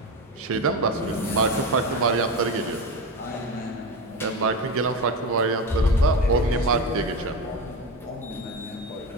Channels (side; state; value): both; normal; correlation 0.21